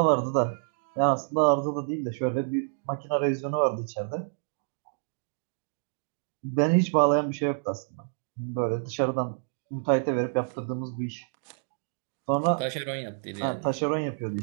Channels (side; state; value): left; silent; digital silence